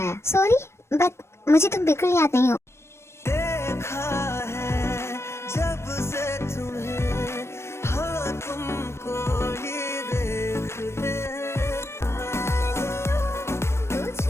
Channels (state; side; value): late; right; 0.13 ms